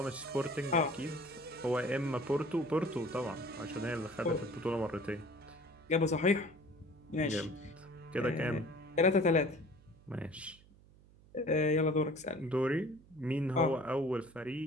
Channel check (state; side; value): noise; right; hum, 25 dB below the sound